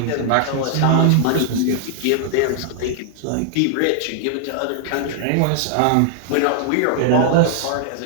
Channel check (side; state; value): both; different; correlation -0.01